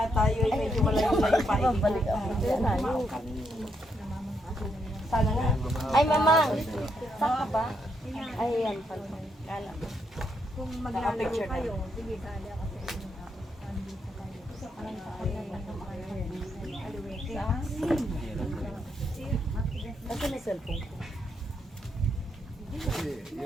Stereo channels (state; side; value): normal; both; correlation 0.77